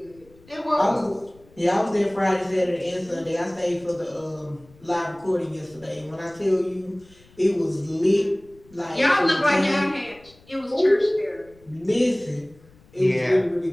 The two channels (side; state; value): left; noise; rumble, 27 dB below the sound